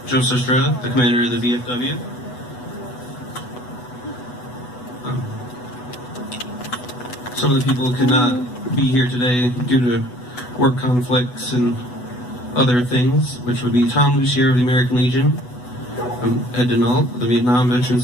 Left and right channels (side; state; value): right; late; 8.1 ms